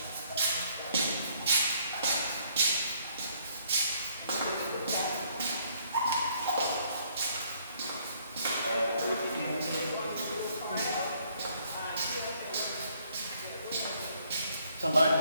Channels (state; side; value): inverted; both; correlation -0.66